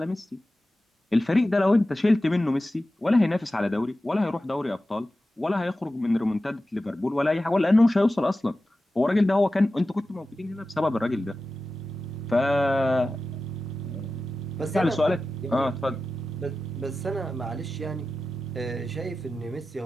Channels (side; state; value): both; normal; correlation 0.94